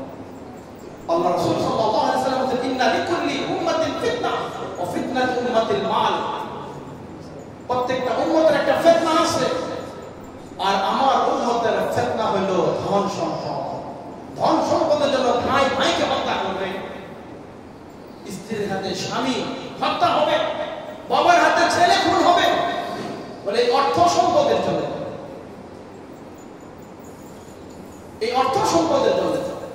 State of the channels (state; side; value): identical; both; correlation 1.00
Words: আল্লাহ রাসূল সাল্লাল্লাহু আলাইহি ওয়াসাল্লাম বলেন ইন্না লিকুল্লি উম্মাতিন ফিতনা ওয়া ফিতনাতু উম্মাতিল মাল। প্রত্যেকটা উম্মতের একটা ফিতনা আছে, আর আমার উম্মতের ফিতনা হলো ধন সম্পদ। ধন সম্পদের জন্য ভাই ভাইকে হত্যা করবে, স্ত্রীর হাতে স্বামী হত্যা হবে, বাবার হাতে ছেলে খুন হবে, বলে এই অর্থ সম্পদের জন্য, এই অর্থ সম্পদের জন্য।